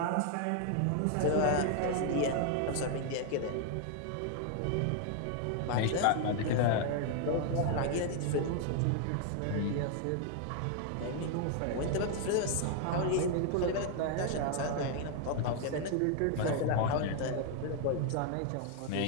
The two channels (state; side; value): different; both; correlation 0.00